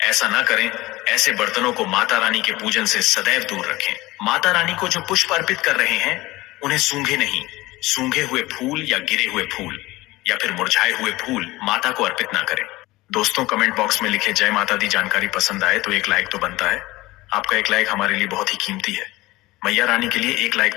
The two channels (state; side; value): quieter; right; 19.5 dB